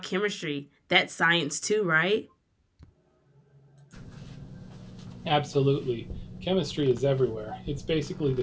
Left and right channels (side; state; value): both; identical; correlation 1.00